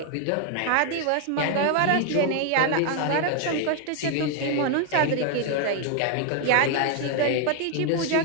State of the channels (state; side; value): different; both; correlation 0.01